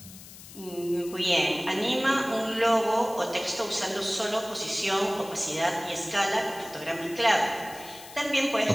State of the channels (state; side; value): noise; left; hiss, 17 dB below the sound